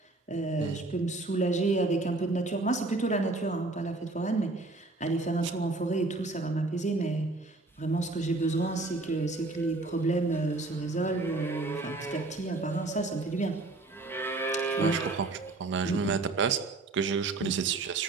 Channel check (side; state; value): left; quieter; 3.2 dB